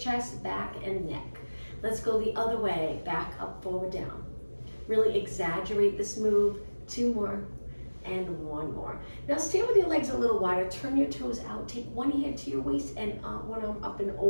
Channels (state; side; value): inverted; both; correlation -1.00